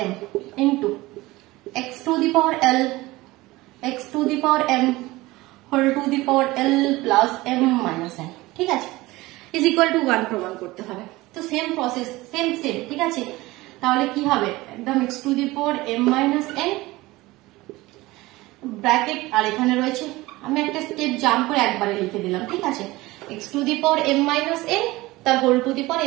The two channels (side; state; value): left; quieter; 19.8 dB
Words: m into x to the power l x to the power m whole to the power l plus m minus n। ঠিক আছে, is equal to 1 প্রমাণ করতে হবে। তো same process same. ঠিক আছে, তাহলে কি হবে একদম x to the power m minus n bracket, আর এখানে রয়েছে, আমি একটা স্টেপ জাম্প করে একবারে লিখে দিলাম। ঠিক আছে, x to the power m minus n তার whole to the power